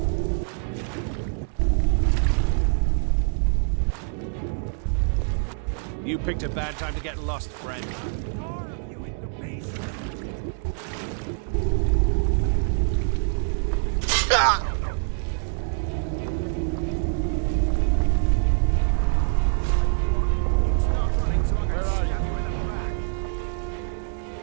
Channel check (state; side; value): silent; left; digital silence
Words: You picked a bad time to get lost, friend.